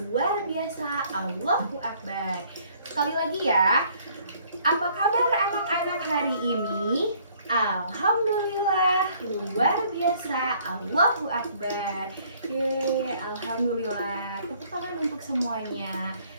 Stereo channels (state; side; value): inverted; both; correlation -0.61